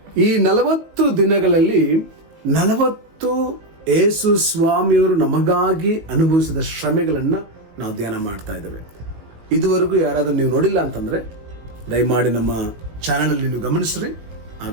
ಈ 40 ದಿನಗಳಲ್ಲಿ 40 ಯೇಸು ಸ್ವಾಮಿಯವರು ನಮಗಾಗಿ ಅನುಭವಿಸಿದ ಶ್ರಮೆಗಳನ್ನ ನಾವು ಧ್ಯಾನ ಮಾಡ್ತಾ ಇದ್ದೇವೆ. ಇದುವರೆಗೂ ಯಾರಾದ್ರೂ ನೀವು ನೋಡಿಲ್ಲ ಅಂತಂದ್ರೆ ದಯಮಾಡಿ ನಮ್ಮ ಚಾನೆಲ್ ಅಲ್ಲಿ ನೀವು ಗಮನಿಸ್ರಿ, ಆ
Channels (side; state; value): left; late; 19 ms